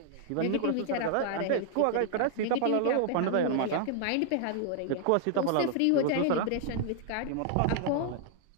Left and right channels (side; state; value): both; different; correlation 0.00